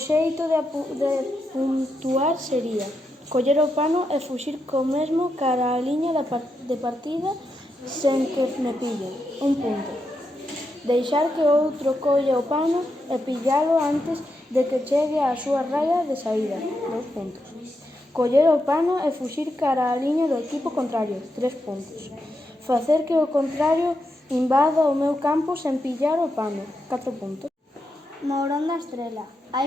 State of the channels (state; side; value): normal; both; correlation 0.84